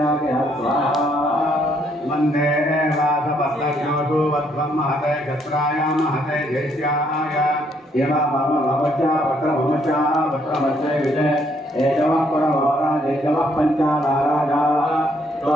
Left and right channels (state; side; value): normal; both; correlation 0.70